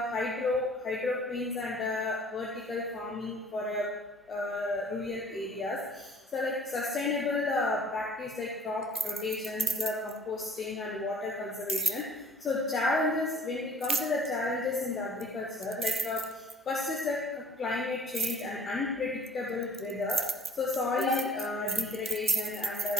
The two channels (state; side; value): normal; both; correlation 0.52